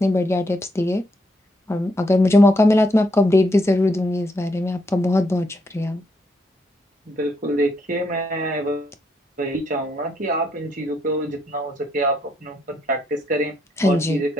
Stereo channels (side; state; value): both; normal; correlation 0.76